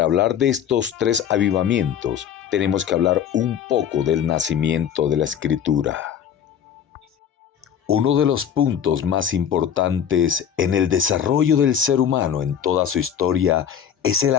hablar de estos tres avivamientos, tenemos que hablar un poco del nacimiento de la Escritura. Uno de los puntos más importantes en el desarrollo del ser humano en toda su historia es el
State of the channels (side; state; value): right; quieter; 8.7 dB